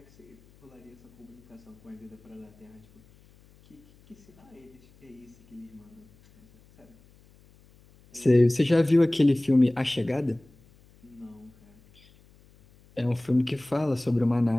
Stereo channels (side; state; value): left; noise; hum, 28 dB below the sound